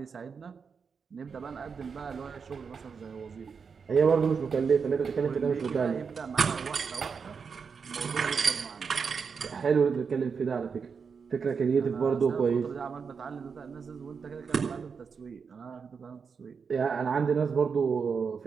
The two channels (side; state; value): left; quieter; 5.8 dB